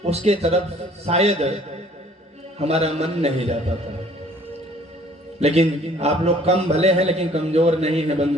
उसके तरफ शायद हमारा मन नहीं जा पाता। लेकिन आप लोग कम भले हैं लेकिन कमजोर नहीं है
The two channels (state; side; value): normal; both; correlation 0.56